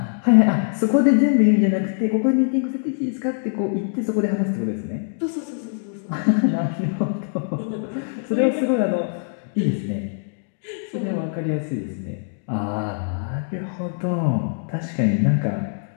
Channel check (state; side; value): silent; right; digital silence